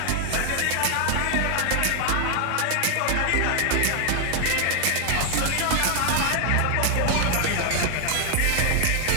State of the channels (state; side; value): different; both; correlation 0.00